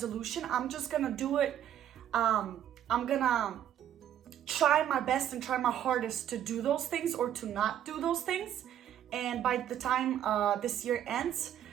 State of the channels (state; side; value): quieter; left; 10.7 dB